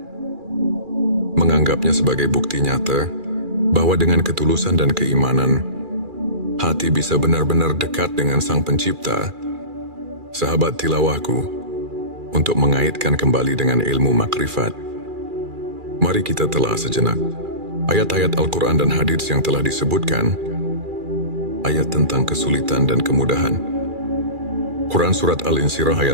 menganggapnya sebagai bukti nyata bahwa dengan ketulusan dan keimanan, hati bisa benar-benar dekat dengan Sang Pencipta. Sahabat tilawahku, untuk mengaitkan kembali dengan ilmu makrifat, mari kita telah sejenak ayat-ayat Al-Quran dan hadits yang telah disebutkan. Ayat tentang kesulitan dan kemudahan. Quran Surat Al-Insyirah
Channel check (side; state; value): left; late; 2.4 ms